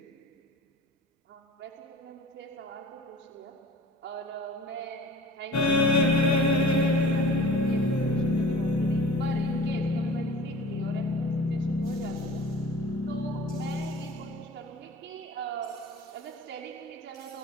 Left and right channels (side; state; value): both; normal; correlation 0.43